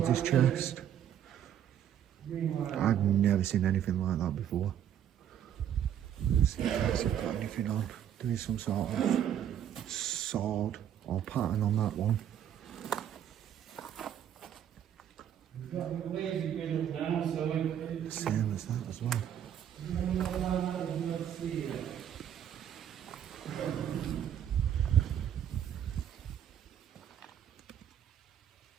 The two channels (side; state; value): left; quieter; 9.9 dB